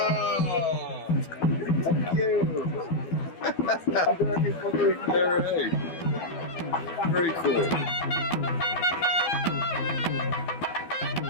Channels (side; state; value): right; late; 12 ms